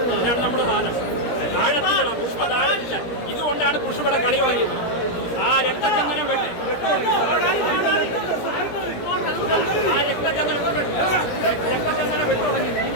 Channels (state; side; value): late; right; 17 ms